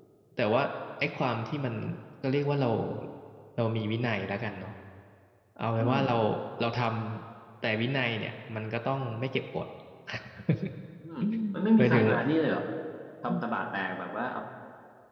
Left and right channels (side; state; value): both; identical; correlation 1.00